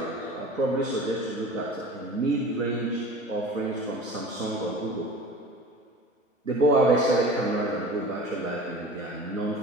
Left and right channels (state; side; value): normal; both; correlation 0.39